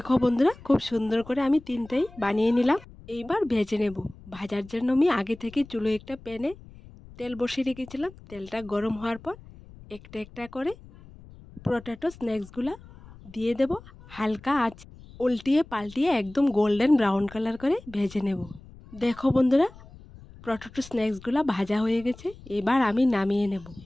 বন্ধুরা, খুব সুন্দর করে আমি 3টাই বানিয়ে নিলাম। এইবার ভেজে নেব। ভাজার জন্য আমি আগে থেকে চুলো একটা প্যানে তেল বসিয়ে রেখেছিলাম। তেলটা গরম হওয়ার পর একটা একটা করে পটেটো স্ন্যাক্সগুলো দিয়ে দেব। হালকা আঁচ উল্টিয়ে পাল্টিয়ে একদম গোল্ডেন ব্রাউন কালার করে ভেজে নেব। দেখো বন্ধুরা, পটেটো স্ন্যাক্সগুলো ভাজা হয়ে গেছে। এবার আমি নামিয়ে নেব।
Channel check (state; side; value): noise; left; rumble, 20 dB below the sound